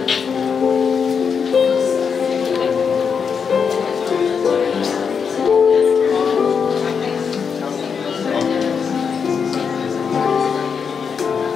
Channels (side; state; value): right; quieter; 6.3 dB